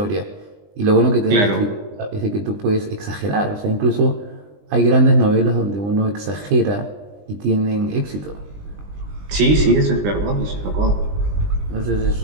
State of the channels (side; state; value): left; late; 20 ms